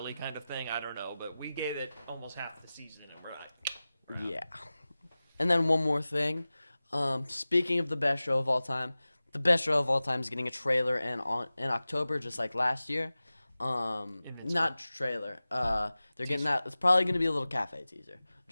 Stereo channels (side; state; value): both; inverted; correlation -0.96